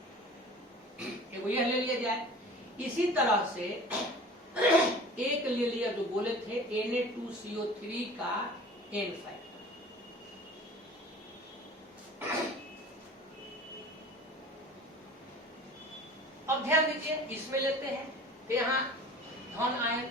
एगो यह ले लिया जाए। इसी तरह से एक ले लिया जो बोले थे Na2CO3 का n फैक्टर। अब ध्यान दीजिए इसमें लेते हैं तो यहाँ धन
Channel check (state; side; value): normal; both; correlation 0.42